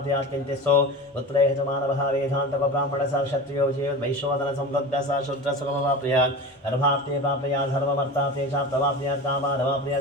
किञ्चित्सो पुत्रेह च मानवः वेदान्तको ब्राह्मणः स क्षत्रियो वैश्वदनसंवृद्धः स शूद्रसुखमवाप्नुयात् गर्भाप्ते प्राप्नुयात् धर्ममर्थाप्ते चाप्तवाप्नुयात्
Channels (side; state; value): both; normal; correlation 0.30